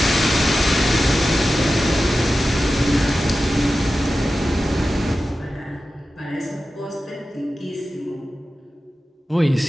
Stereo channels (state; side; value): normal; both; correlation 0.93